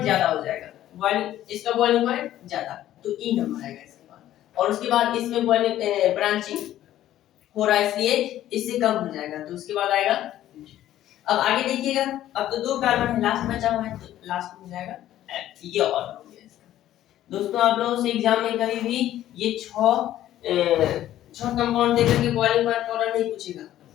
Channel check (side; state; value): right; quieter; 12.9 dB